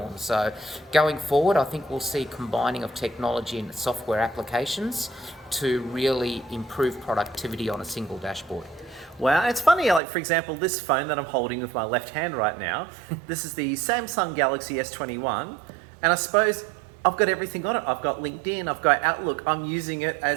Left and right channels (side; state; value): left; drops out; at 10.0 s